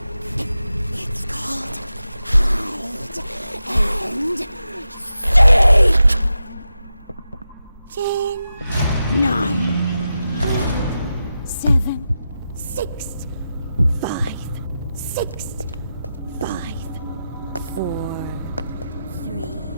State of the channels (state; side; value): inverted; both; correlation -0.90